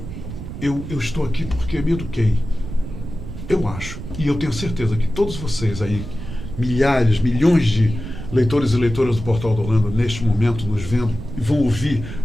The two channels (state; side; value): noise; right; rumble, 9 dB below the sound